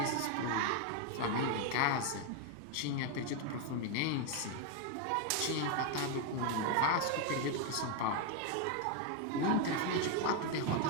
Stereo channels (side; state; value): both; different; correlation 0.01